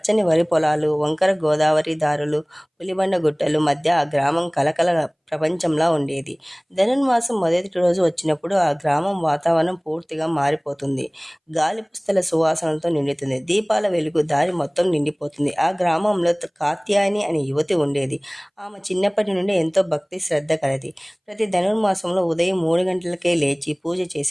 వరి పొలాలు, వంకర గోదావరి దారులు, పులిబండ గుట్టలు మధ్య ఆ గ్రామం కలకల ప్రపంచంలా ఉండేది. ధనుర్మాసం మొదటి రోజు వచ్చినప్పుడు ఆ గ్రామం వాతావరణం పూర్తిగా మారిపోతుంది. గాలి పుస్తల సువాసనలతో నిండుతుంది. దీపాల వెలుగు దారి మొత్తం నిండిపోతుంది. ఆ గ్రామంలో కాత్యాయని అనే యువతి ఉండేది. ఆమె చిన్నప్పటి నుండి ఎంతో భక్తి శ్రద్ధ కలది. ప్రతి ధనుర్మాసంలో ఉదయం 3 గంటలకే లేచి పూజ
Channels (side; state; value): both; identical; correlation 1.00